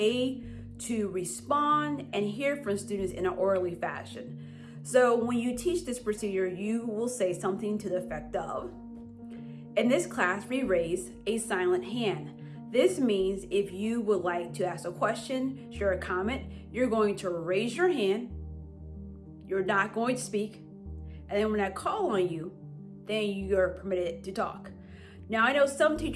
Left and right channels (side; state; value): both; identical; correlation 1.00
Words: to respond and hear from students in an orderly fashion. So when you teach this procedure, you will say something to the effect of, in this class, we raise a silent hand. This means if you would like to ask a question, share a comment, you're going to raise your hand, you're not going to speak, and then when I call on you, then you're permitted to talk. Now, I know some